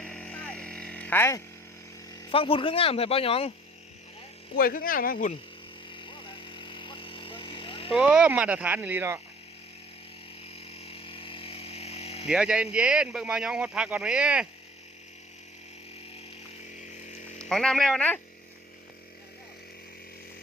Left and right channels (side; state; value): both; normal; correlation 0.53